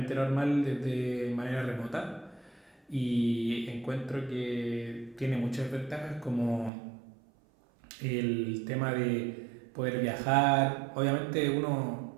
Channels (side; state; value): left; drops out; at 6.7 s